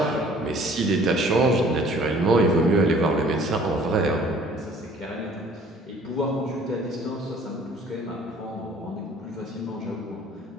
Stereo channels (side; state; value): both; normal; correlation 0.54